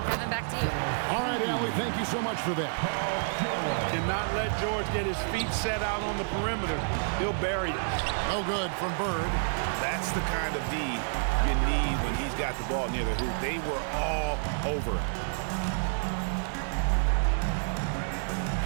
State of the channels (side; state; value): left; silent; digital silence